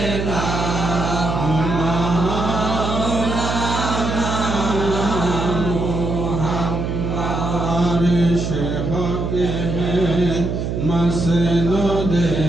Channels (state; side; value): noise; right; hum, 2 dB below the sound